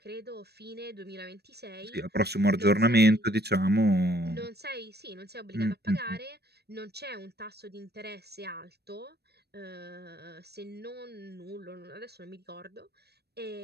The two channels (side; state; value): left; late; 0.47 ms